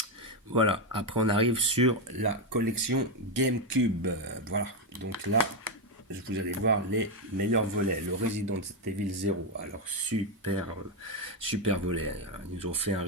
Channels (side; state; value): both; normal; correlation 0.06